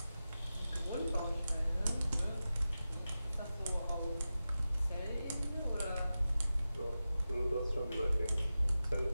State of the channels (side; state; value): both; inverted; correlation -0.94